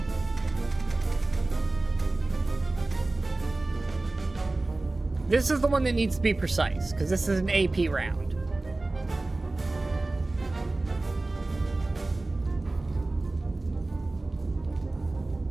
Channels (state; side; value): quieter; left; 3.0 dB